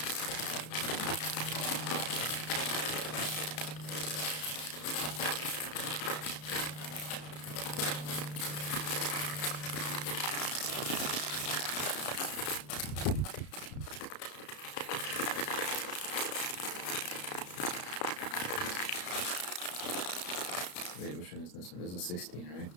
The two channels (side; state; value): right; late; 33 ms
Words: Wait, which one is this one? This is 16, right?